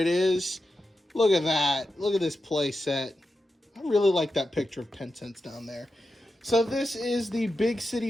is. Look at that. Look at this play set. I really like that picture of 10 cents down there. So this is the Big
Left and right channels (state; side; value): normal; both; correlation 0.89